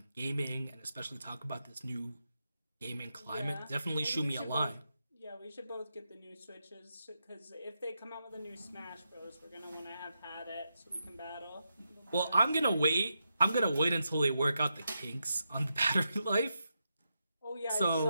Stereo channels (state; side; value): inverted; both; correlation -0.86